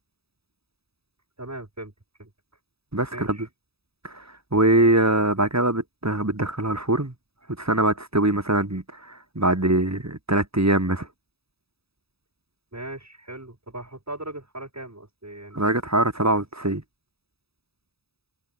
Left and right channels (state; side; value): late; left; 0.77 ms